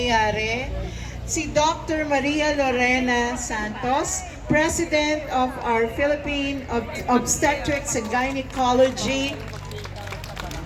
Si Dr. Maria Lorena Santos, President of our Philippine Obstetrics and Gynecology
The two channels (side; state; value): both; identical; correlation 1.00